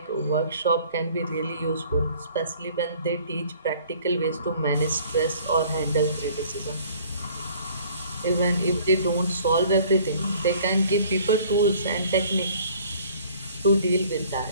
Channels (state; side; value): inverted; both; correlation -0.54